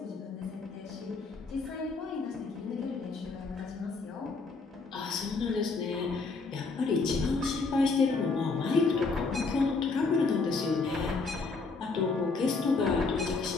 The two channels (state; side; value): quieter; right; 4.1 dB